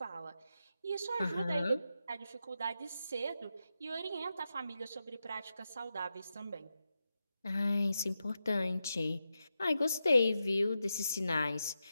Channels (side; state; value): both; inverted; correlation -0.88